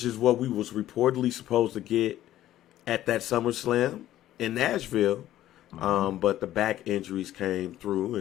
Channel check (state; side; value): quieter; right; 13.4 dB